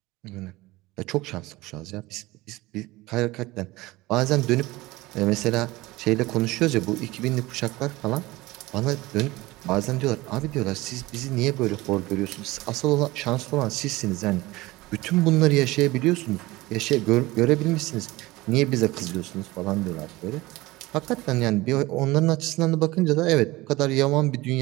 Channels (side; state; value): left; quieter; 20.0 dB